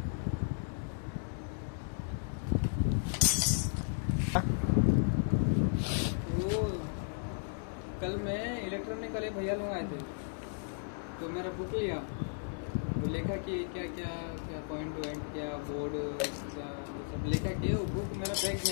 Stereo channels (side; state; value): right; silent; digital silence